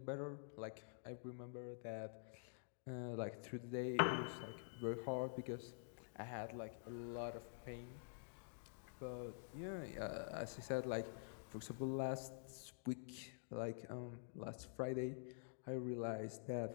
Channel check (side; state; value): right; silent; digital silence